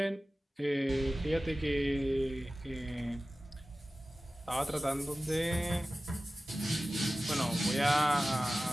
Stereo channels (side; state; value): both; normal; correlation 0.96